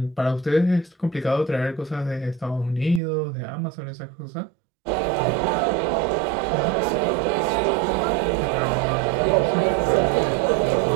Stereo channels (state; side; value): drops out; left; at 3.0 s